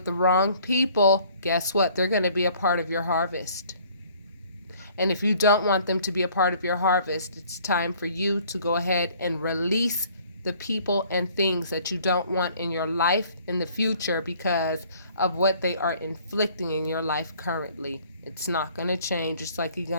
the wrong people, guess what? They're going to be a part of your harvest. And if you don't want them to be a part of your harvest, it's time for you to go ahead and release the people and things that you don't want in your life in the future because of what they are inflicting in your life currently. It's not going to change. It's like you're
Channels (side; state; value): both; inverted; correlation -0.57